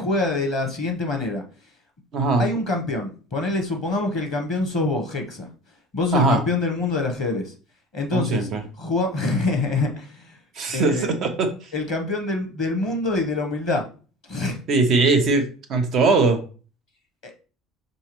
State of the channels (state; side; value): normal; both; correlation 0.38